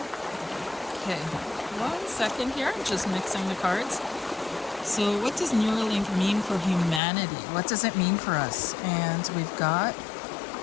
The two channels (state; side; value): drops out; right; at 7.0 s